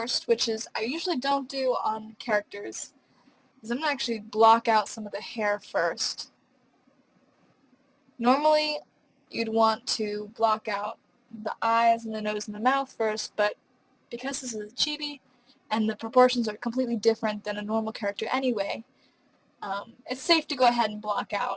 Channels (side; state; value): both; identical; correlation 1.00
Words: which is I usually don't do on characters, is I'm going to actually block out some of the hair first. Normally, you'd want to block out the eyes and the nose and the mouth first, but because this is a chibi and the proportions are completely different than a normal character anyway, it's safe to go ahead and block